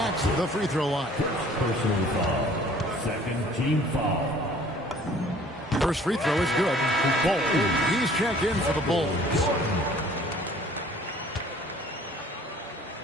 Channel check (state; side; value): normal; both; correlation 0.53